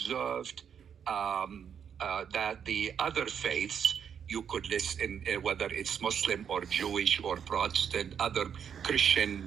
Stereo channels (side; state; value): left; quieter; 7.8 dB